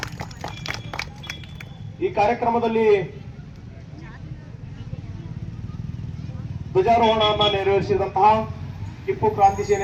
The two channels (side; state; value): both; identical; correlation 1.00